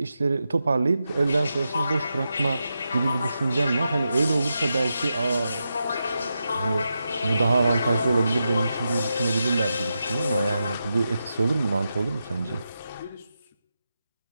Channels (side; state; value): both; inverted; correlation -0.88